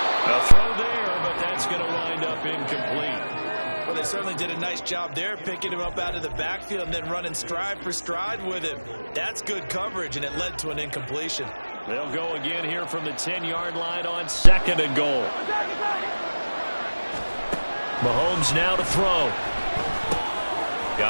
A throw there, but that's going to wind up incomplete. Well, they certainly did a nice job there, picking him up out of the backfield and then running stride for stride with him. That's good coverage, and it led to an incompletion. They'll go again here from the 10-yard line on 2nd and goal. Mahomes now to throw.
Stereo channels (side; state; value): both; inverted; correlation -1.00